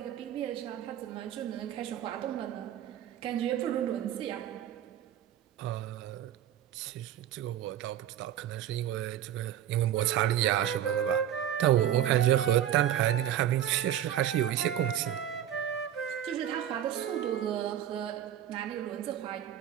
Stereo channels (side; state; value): left; quieter; 10.8 dB